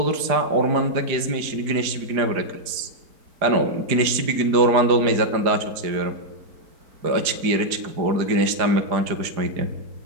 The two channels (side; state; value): left; late; 4.9 ms